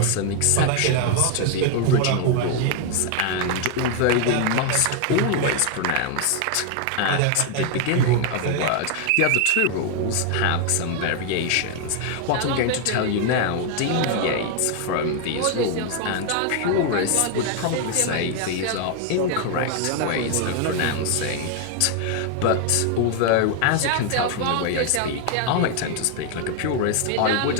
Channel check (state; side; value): different; both; correlation 0.00